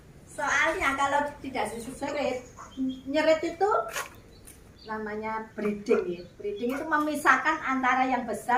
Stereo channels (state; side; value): identical; both; correlation 1.00